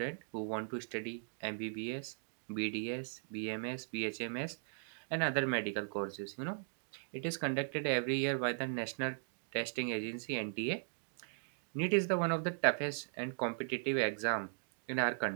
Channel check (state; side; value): silent; left; digital silence